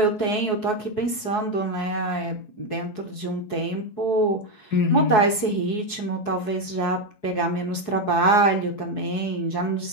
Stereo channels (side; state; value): right; late; 4.7 ms